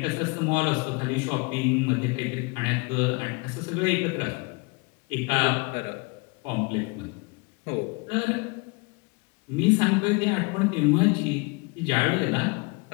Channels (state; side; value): quieter; right; 28.4 dB